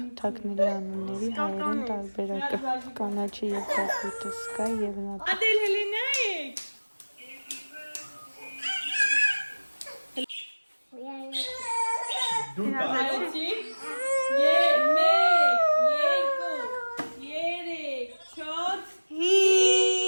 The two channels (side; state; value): both; inverted; correlation -1.00